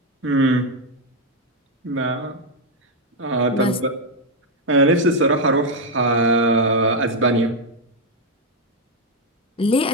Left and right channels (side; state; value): both; normal; correlation 0.02